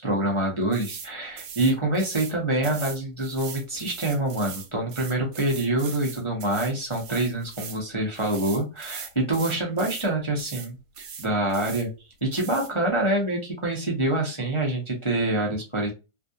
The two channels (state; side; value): late; right; 1.5 ms